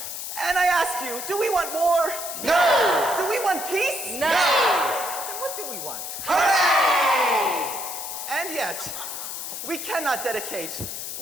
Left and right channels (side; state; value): left; noise; hiss, 6 dB below the sound